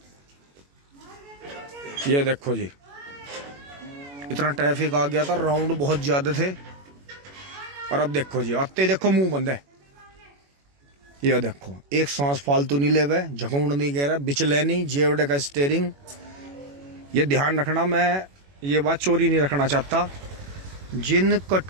ये देखो जी, इतना ट्रैफिक आ गया था, राउंड बहुत ज्यादा थे। और अब देखो जी, आते देखो मुंह बंद है। ये देखो एक सांस फालतू नहीं ले हुए, झकूंड नहीं कह रहा, बिचले नहीं, जेवड़े का स्टेयरिंग। ये ध्यान रखना, मैं ये बात चोरी नहीं रखना चाहता। जिन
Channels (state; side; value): late; left; 21 ms